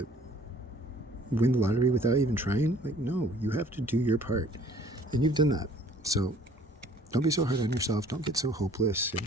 win the lottery without even trying. Like, no, you have to do your part, and you've done that. So don't be so hard on yourself. Don't get so hopeless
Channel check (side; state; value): both; normal; correlation 0.55